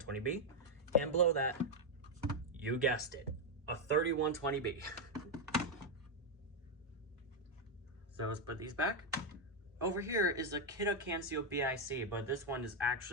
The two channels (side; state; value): both; normal; correlation 0.02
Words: And below that, you guessed it, a 3120B. So let's put these back. Over here is the Kidde Cancio BIC, but this one is